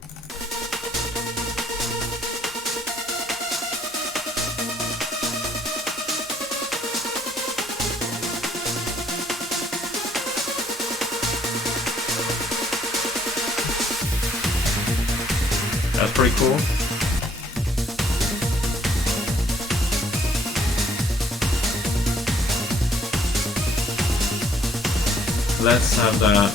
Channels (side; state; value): both; normal; correlation 0.65